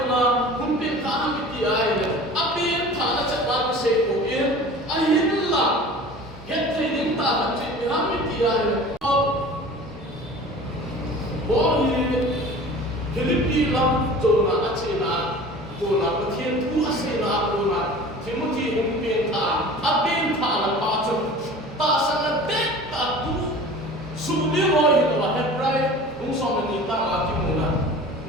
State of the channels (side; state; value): both; normal; correlation 0.41